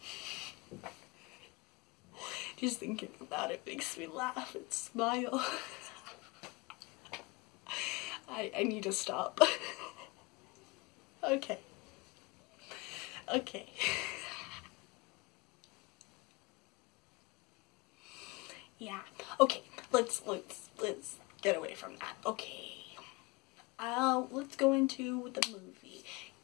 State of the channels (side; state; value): right; quieter; 24.7 dB